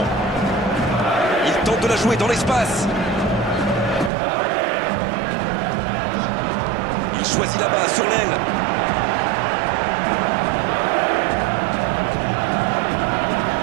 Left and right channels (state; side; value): drops out; left; at 4.1 s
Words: Il tente de la jouer dans l'espace. Il choisit là-bas, sur l'aile.